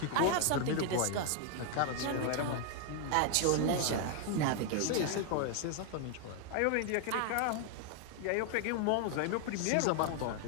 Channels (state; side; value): different; both; correlation 0.00